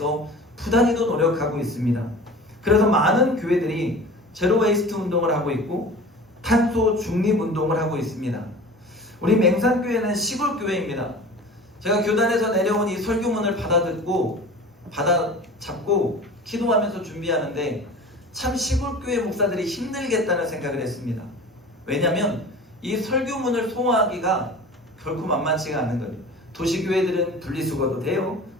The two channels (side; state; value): both; normal; correlation 0.39